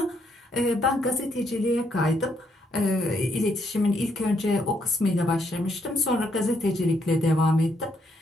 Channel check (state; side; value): normal; both; correlation 0.74